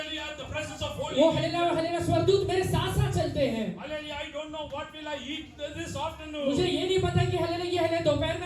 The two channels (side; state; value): both; identical; correlation 1.00